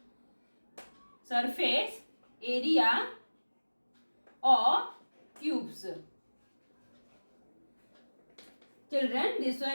area of cubes. Children, this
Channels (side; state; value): both; inverted; correlation -1.00